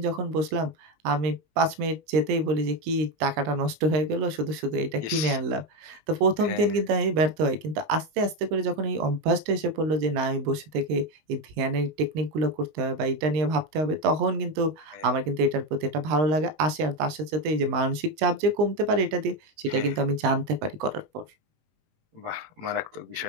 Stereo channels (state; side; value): late; left; 19 ms